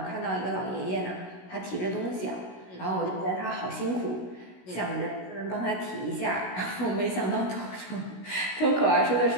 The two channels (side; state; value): right; late; 16 ms